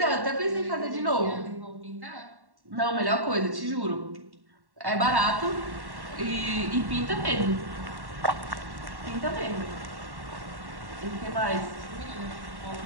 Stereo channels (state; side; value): late; left; 1.1 ms